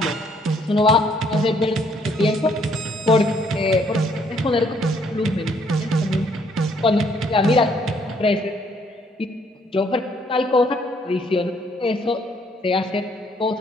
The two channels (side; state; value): both; normal; correlation 0.66